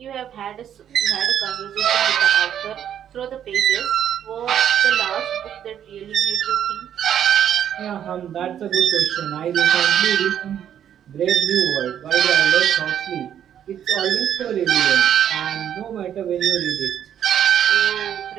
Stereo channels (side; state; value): left; quieter; 9.8 dB